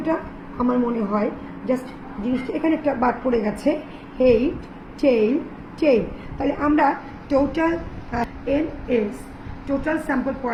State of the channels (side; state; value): both; identical; correlation 1.00